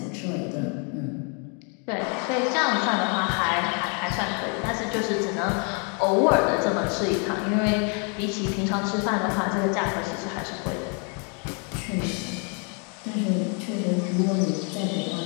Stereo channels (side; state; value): right; quieter; 38.1 dB